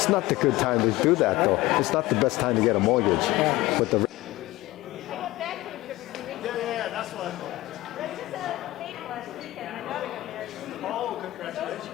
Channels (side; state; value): right; quieter; 17.9 dB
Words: not the good time to do that, though. It's not the best time to get a mortgage. Yeah. With the That's what I thought. Oh,